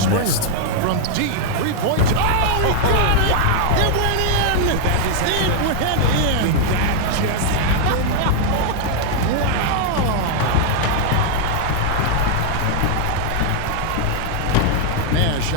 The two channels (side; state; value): both; different; correlation -0.01